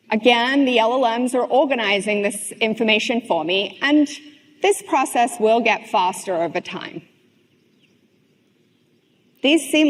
Again, the LLMs are organizing this information for me, and this process will get faster over time. These seem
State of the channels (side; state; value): both; identical; correlation 1.00